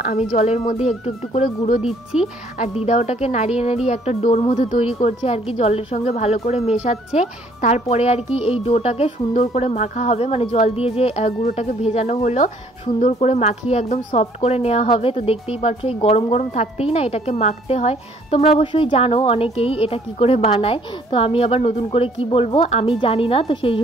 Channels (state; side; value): normal; both; correlation 0.61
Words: আমি জলের মধ্যে একটু একটু করে গুঁড়ো দিচ্ছি, আর দিদা ওটাকে নাড়িয়ে নাড়িয়ে একটা ডোর মতো তৈরি করছে আর কি, জলের সঙ্গে ভালো করে মেশাচ্ছে। তারপরে আর কি এই ডোটাকে সুন্দর করে মাখা হবে, মানে জল দিয়ে যে গুঁড়োটাকে ভেজানো হলো সুন্দর করে মাখিয়ে একদম সফট করে নেওয়া হবে। তো দেখতেই পারছো এই গরম গরম থাকতেই না এটাকে মাখতে হয়। তোমরা অবশ্যই জানো অনেকেই এটা কি করে বানায়, তো আমি আবার নতুন করে কি বলবো, আমি জানি না, তো সেই